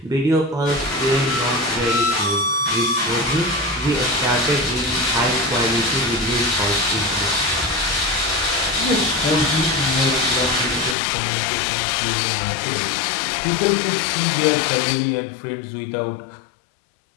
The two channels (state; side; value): drops out; right; at 11.0 s